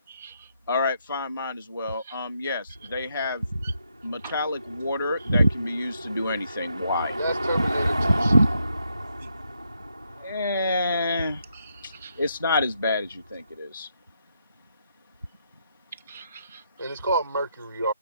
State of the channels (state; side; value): inverted; both; correlation -0.78